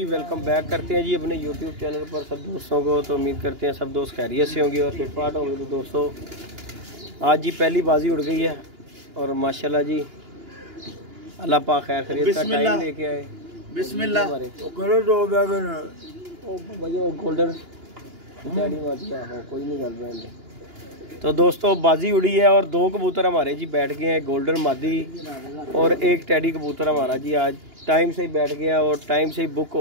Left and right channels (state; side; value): late; left; 2.9 ms